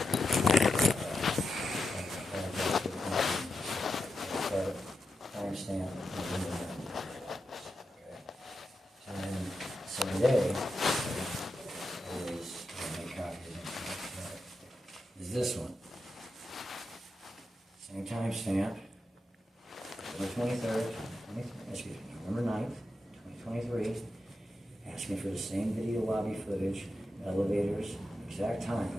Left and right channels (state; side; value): normal; both; correlation 0.87